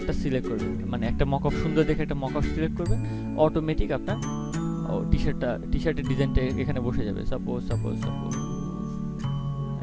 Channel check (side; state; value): both; identical; correlation 1.00